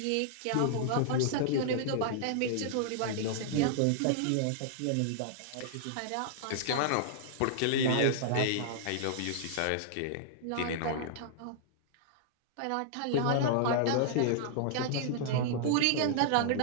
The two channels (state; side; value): different; both; correlation -0.01